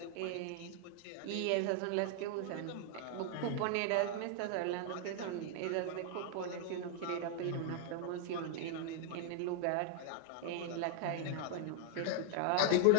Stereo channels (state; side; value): different; both; correlation 0.00